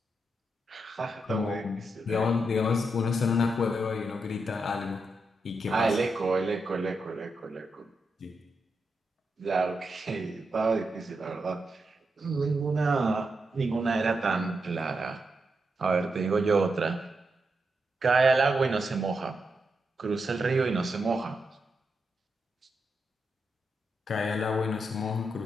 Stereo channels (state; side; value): normal; both; correlation 0.85